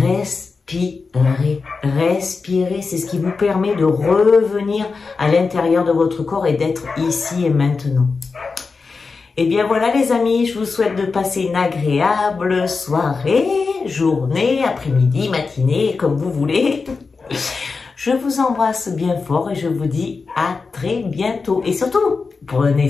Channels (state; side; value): quieter; right; 4.5 dB